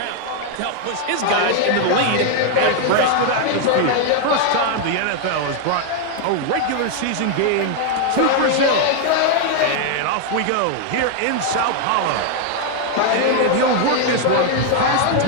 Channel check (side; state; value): both; different; correlation 0.00